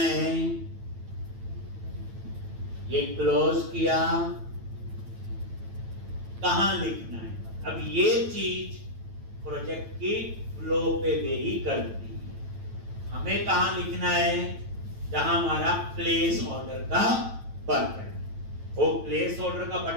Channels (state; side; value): late; left; 9.1 ms